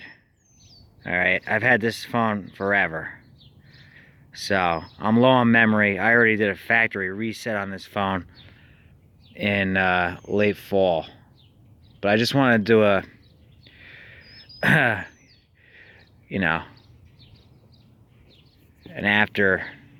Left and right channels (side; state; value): both; identical; correlation 1.00